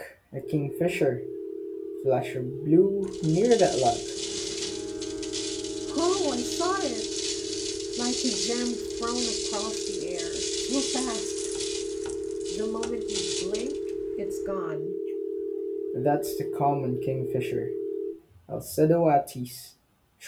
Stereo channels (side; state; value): both; identical; correlation 1.00